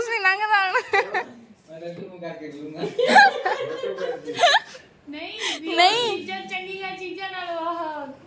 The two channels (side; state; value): both; identical; correlation 1.00